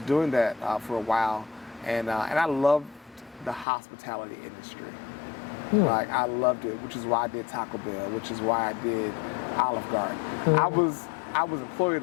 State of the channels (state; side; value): drops out; right; at 3.7 s